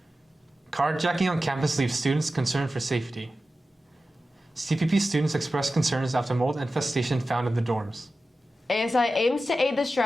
Carjacking on campus leaves students concerned for safety. CPP students expressed concerns after mold infestation found in the dorms. ASI aims to aid the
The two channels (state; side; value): normal; both; correlation 0.93